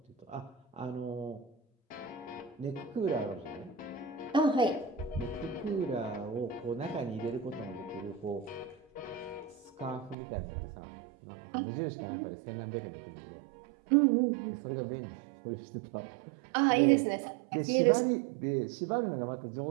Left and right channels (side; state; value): left; drops out; at 10.2 s